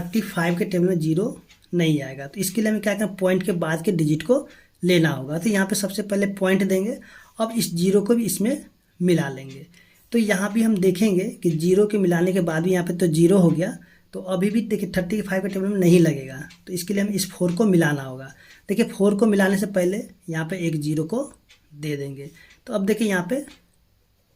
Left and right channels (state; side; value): identical; both; correlation 1.00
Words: के टेबल में जीरो नहीं आएगा, तो इसके लिए हमें क्या करना, पॉइंट के बाद के डिजिट को लेना होगा। तो यहाँ पे सबसे पहले पॉइंट देंगे, अब इस जीरो को भी इसमें मिला लेंगे। तो यहाँ भी हम देखेंगे कि जीरो के मिलाने के बाद भी यहाँ पे तो जीरो हो गया, तो अभी भी देखिए 35 के टेबल में नहीं लगेगा, तो इसके लिए हमें इस 4 को मिलाना होगा। देखिए 4 को मिलाने से पहले यहाँ पे एक जीरो को दे देंगे, तो अब देखिए यहाँ पे